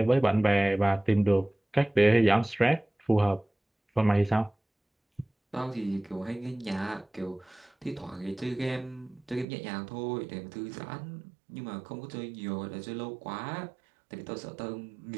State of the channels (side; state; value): left; drops out; at 9.5 s